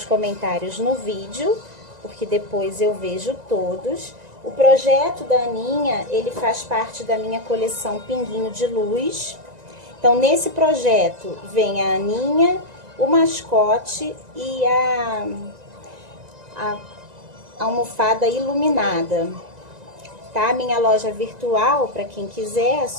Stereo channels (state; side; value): late; left; 1.9 ms